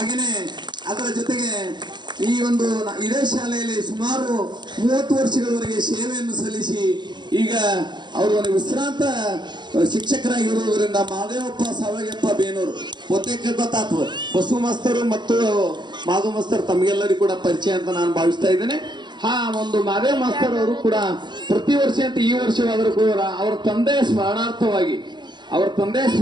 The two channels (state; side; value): late; left; 0.21 ms